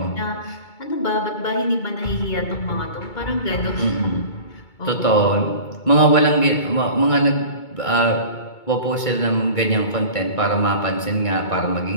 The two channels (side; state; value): right; late; 2.2 ms